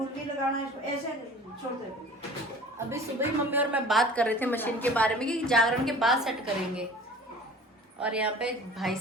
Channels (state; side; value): normal; both; correlation 0.44